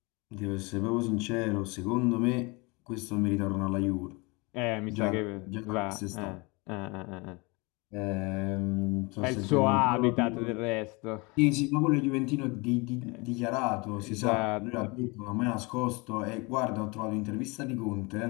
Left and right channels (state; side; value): quieter; right; 27.3 dB